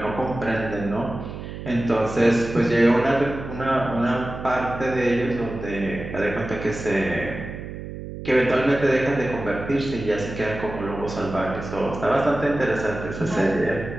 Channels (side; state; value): right; noise; hum, 9 dB below the sound